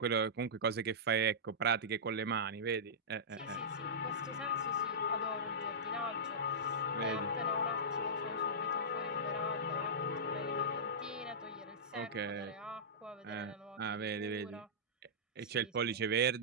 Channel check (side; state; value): both; normal; correlation -0.15